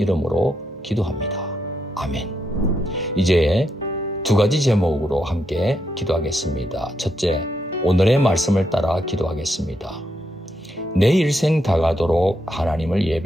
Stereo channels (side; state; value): both; normal; correlation 0.80